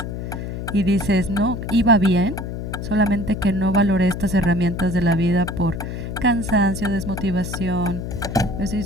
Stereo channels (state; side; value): noise; left; hum, 6 dB below the sound